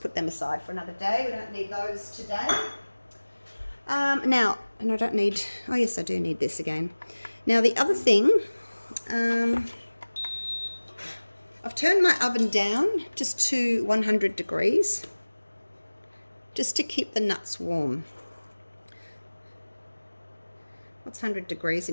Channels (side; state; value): both; inverted; correlation -1.00